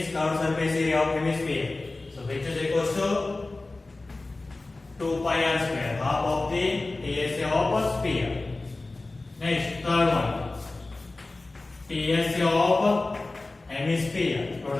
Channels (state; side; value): quieter; right; 3.2 dB